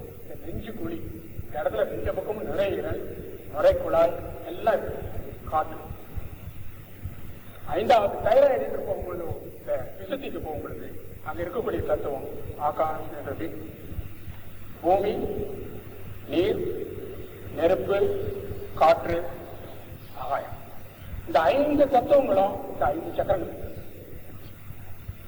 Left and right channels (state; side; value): identical; both; correlation 1.00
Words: இந்த நெஞ்சு குழி. இந்த இடத்துல 2 பக்கமும் நுரையீரல், நுரைக்குழாய் எல்லாம் இருக்கு, காற்று. 5வது தைராய்டு என்று போகும்பொழுது, இந்த விசுத்திக்கு போகும்பொழுது அங்க இருக்கக்கூடிய தத்துவம் ஆகாஷ் என்றது பூமி, நீர், நெருப்பு, காற்று, ஆகாயம். இந்த 5 தத்துவங்களும் இந்த 5 சக்கரங்கள்.